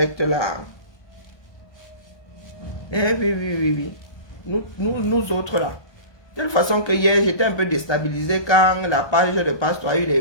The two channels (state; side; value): late; right; 1.3 ms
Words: là. Eh oui. Nous autres là. De toute façon que hier, j'étais un peu déstabilisé quand la page de Pasteur a eu les